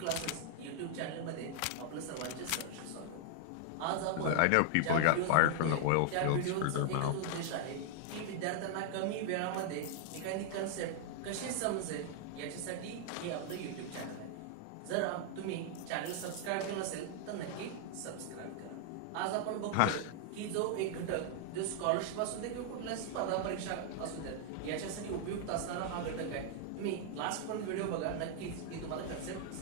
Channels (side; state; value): both; different; correlation -0.01